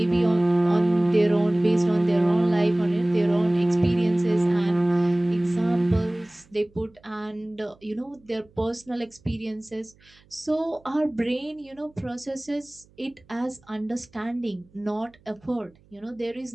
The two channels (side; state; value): right; noise; hum, 30 dB below the sound